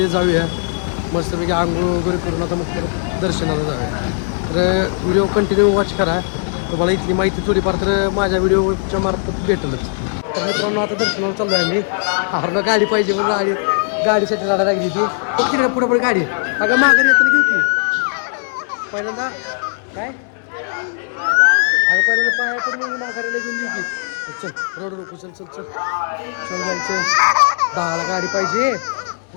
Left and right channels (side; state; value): right; silent; digital silence